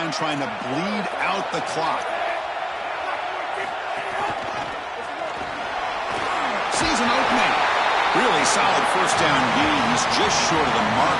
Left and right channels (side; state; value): both; identical; correlation 1.00